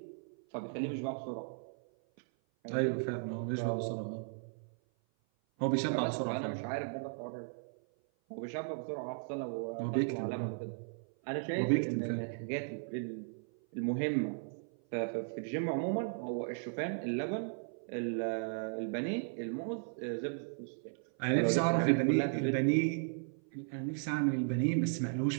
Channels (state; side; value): silent; left; 54 dB below the other